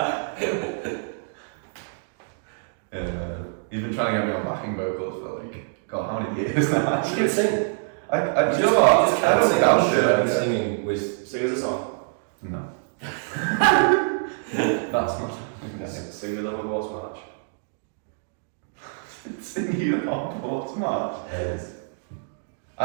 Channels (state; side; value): silent; left; digital silence